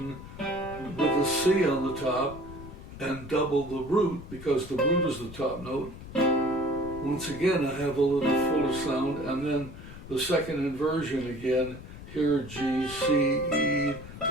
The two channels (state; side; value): noise; left; rumble, 14 dB below the sound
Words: with a C on the top and double the root, because the root is the top note, once again I have a little fuller sound, and then the second inversion again, here G, C, E,